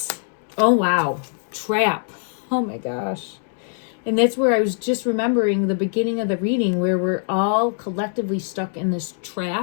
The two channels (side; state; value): right; silent; 64 dB below the other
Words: Oh, wow. Trap. Oh, my gosh. And that's where I was just remembering the beginning of the reading, where we're all collectively stuck in this